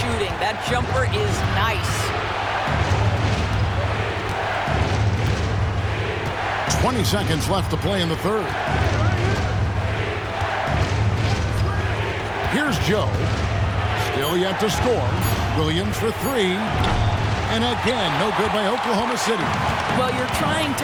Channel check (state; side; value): identical; both; correlation 1.00